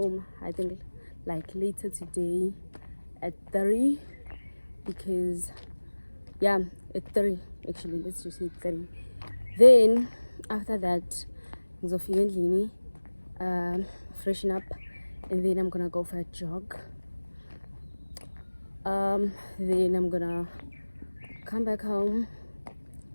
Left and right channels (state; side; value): inverted; both; correlation -1.00